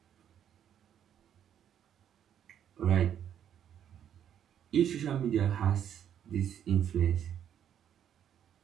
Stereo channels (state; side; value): quieter; left; 9.6 dB